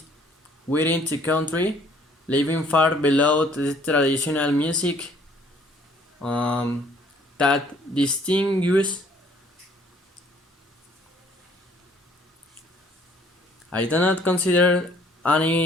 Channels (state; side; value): normal; both; correlation 0.60